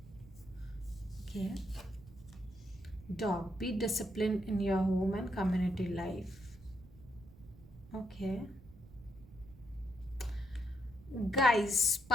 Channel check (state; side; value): noise; right; rumble, 20 dB below the sound